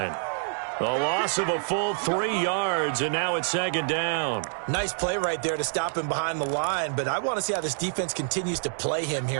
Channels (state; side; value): silent; left; digital silence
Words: A loss of a full 3 yards, and now it's second down. Nice play right there to stop him behind the line, but I want to see how this defense continues to play him